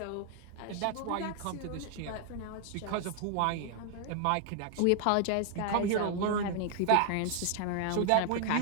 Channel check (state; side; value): different; both; correlation 0.00